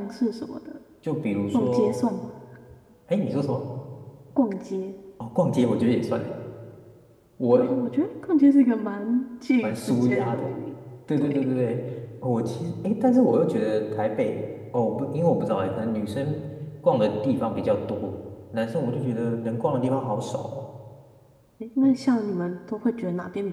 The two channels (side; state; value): both; identical; correlation 1.00